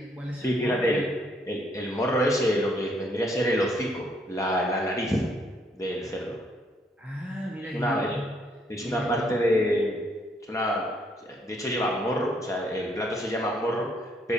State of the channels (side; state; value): both; normal; correlation 0.70